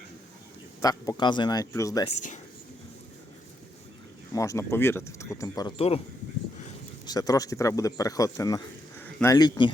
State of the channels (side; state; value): both; normal; correlation 0.80